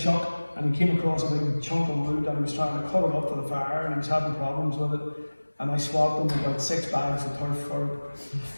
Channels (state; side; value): inverted; both; correlation -1.00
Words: and he came across a big chunk of wood and he was trying to cut it up for the fire, and he was having problems with it, and I swapped him about 6 bags of turf for it.